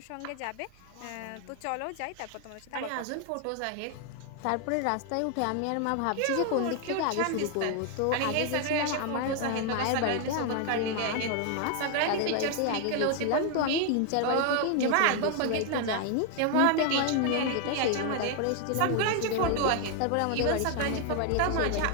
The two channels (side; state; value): both; different; correlation 0.00